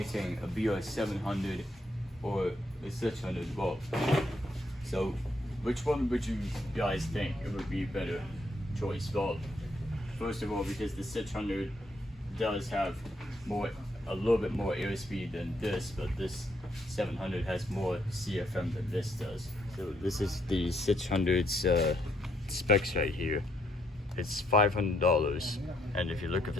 a BR700 or a 600. Well, so which one would you guys think it would be a better choice? Well, first of all, because the 600 does have a little bit more airspeed than this, but this 700 has more CFM than this does. So this is the 600's specs right here. It's $500, and if you look at the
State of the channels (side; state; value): both; normal; correlation 0.73